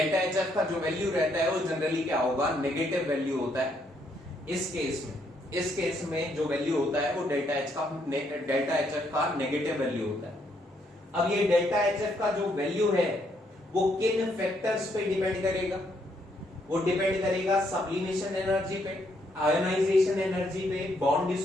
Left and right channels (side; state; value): both; normal; correlation 0.73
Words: HF का जो वैल्यू रहता है वो जनरली क्या होगा? नेगेटिव वैल्यू होता है। इस केस में जो वैल्यू होता है वो डेल्टा HF का नेगेटिव वैल्यू होता है। अब ये डेल्टा HF का जो वैल्यू है वो किन फैक्टर्स पे डिपेंड करेगा? वो डिपेंड करेगा सब्लिमेशन एनर्जी पे, आयोनाइजेशन एनर्जी पे, बॉन्ड